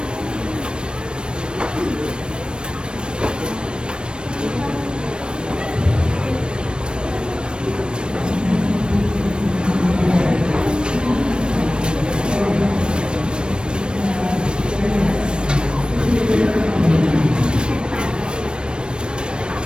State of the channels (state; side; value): late; left; 0.054 ms